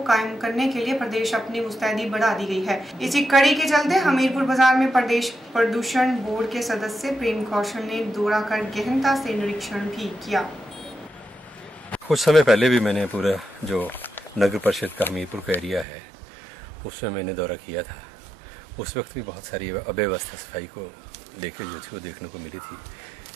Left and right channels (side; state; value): left; drops out; at 15.9 s